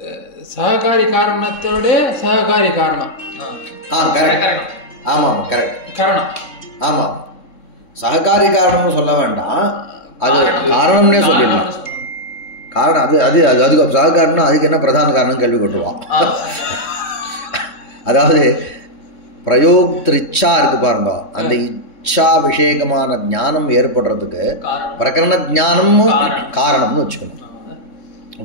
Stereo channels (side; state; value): right; late; 3.6 ms